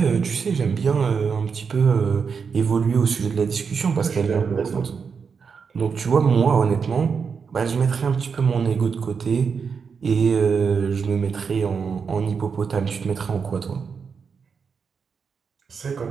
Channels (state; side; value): quieter; left; 5.9 dB